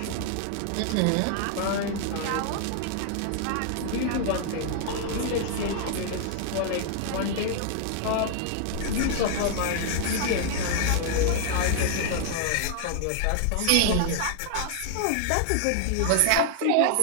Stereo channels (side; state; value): both; different; correlation 0.00